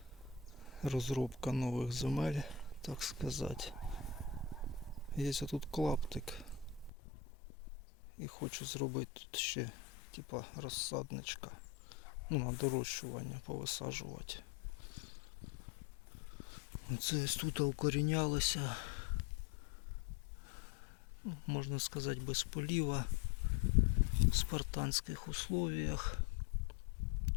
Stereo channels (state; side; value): drops out; right; at 6.9 s